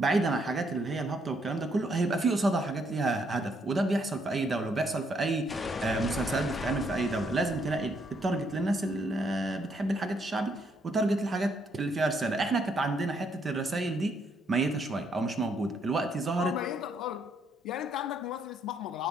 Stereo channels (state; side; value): normal; both; correlation 0.72